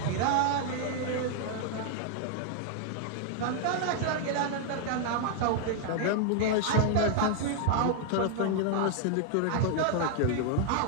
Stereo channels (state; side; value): different; both; correlation 0.00